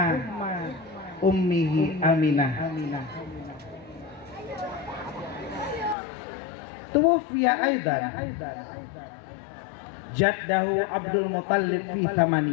ummihi Aminah. Tuwfiya aidan jaddahu Abdul Muttalib fi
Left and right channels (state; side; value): drops out; right; at 6.0 s